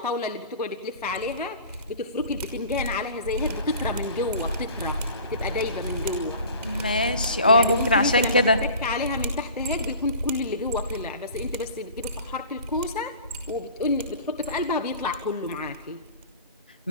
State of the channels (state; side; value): inverted; both; correlation -0.43